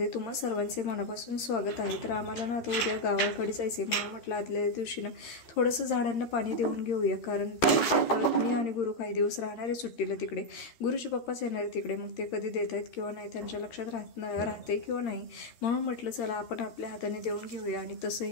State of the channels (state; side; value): late; right; 13 ms